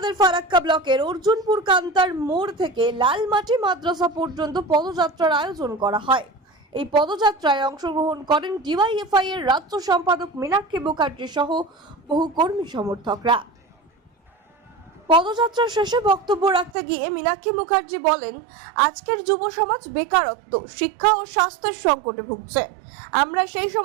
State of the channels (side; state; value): left; drops out; at 16.7 s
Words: ফারাক্কা ব্লকের অর্জুনপুর কান্তার মোড় থেকে লালমাটি মাদ্রাসা পর্যন্ত পদযাত্রার আয়োজন করা হয়। এই পদযাত্রায় অংশগ্রহণ করেন ডিওয়াইএফআই এর রাজ্য সম্পাদক মীনাক্ষী মুখার্জি সহ বহু কর্মী সমর্থকরা। পদযাত্রা শেষে বক্তব্য রাখতে গিয়ে মীনাক্ষী মুখার্জি বলেন, আজকের যুব সমাজ বেকারত্ব, শিক্ষা ও স্বাস্থ্যের সংকটে ভুগছে। আমরা সেই